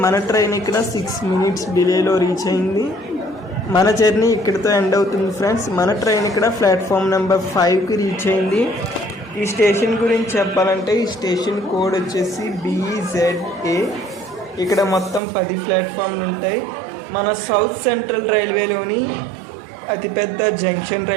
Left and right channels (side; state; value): left; drops out; at 15.2 s